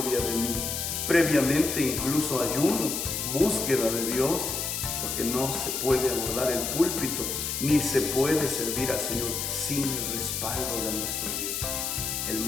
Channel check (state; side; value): noise; left; hiss, 2 dB below the sound